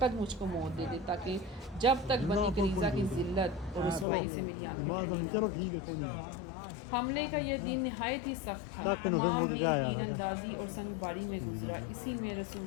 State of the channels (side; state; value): right; drops out; at 4.0 s